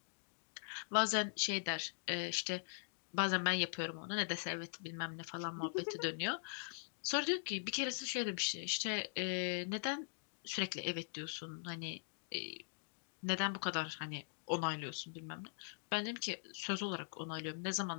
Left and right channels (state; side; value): silent; right; digital silence